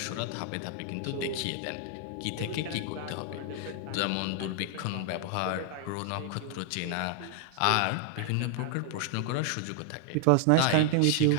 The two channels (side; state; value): both; different; correlation 0.00